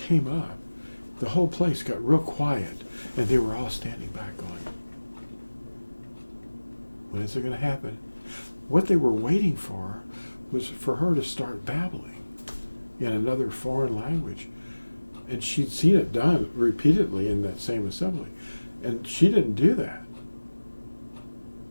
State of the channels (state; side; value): inverted; both; correlation -1.00